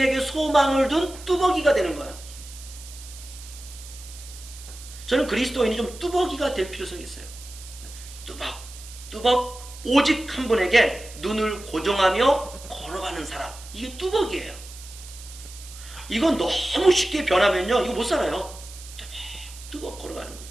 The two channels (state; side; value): noise; right; hiss, 16 dB below the sound